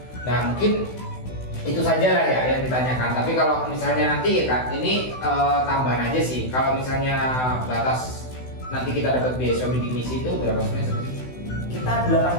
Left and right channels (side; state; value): right; late; 16 ms